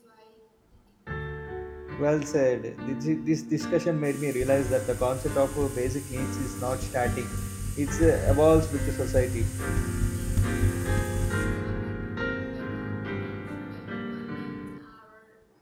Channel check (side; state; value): both; identical; correlation 1.00